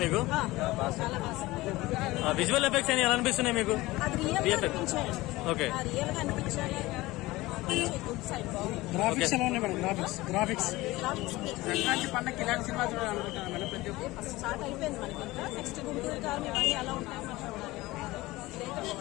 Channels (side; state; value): right; quieter; 19.5 dB